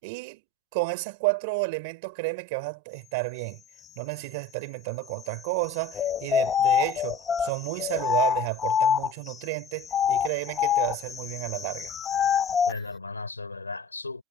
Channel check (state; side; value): normal; both; correlation 0.38